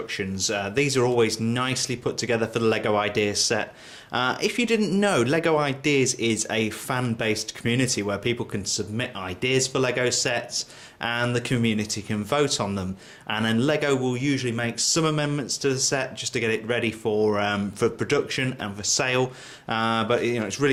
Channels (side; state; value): both; identical; correlation 1.00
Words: These are always nicely put together for the LEGO Ideas set. If you didn't know, LEGO Ideas is a fan-based community where people can submit ideas for LEGO sets and the community can vote on them. And then LEGO will usually make some amendments to the set just to get it ready for production and for sale. But it's